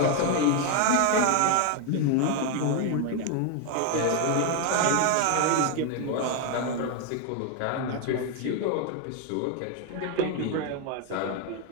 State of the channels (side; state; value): both; different; correlation 0.01